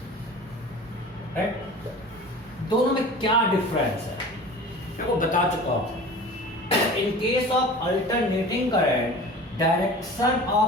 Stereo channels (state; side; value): normal; both; correlation 0.39